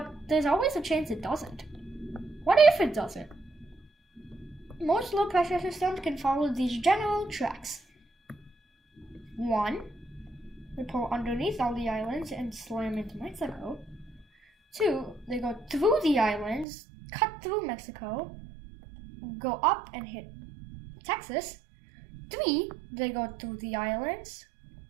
there's always a chance it doesn't. What if it doesn't? Most low-pressure systems can follow these general tracks. 1. They pull underneath all the islands and slam into Mexico. 2. They go through the islands, cut through Mexico, go up and hit Texas. 3. They go through the islands,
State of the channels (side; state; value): left; drops out; at 16.7 s